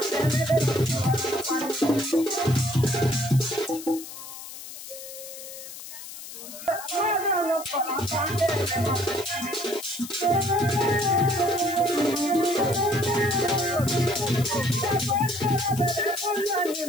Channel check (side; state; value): left; noise; hiss, 12 dB below the sound